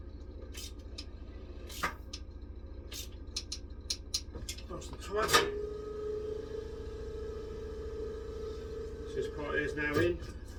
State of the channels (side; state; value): both; identical; correlation 1.00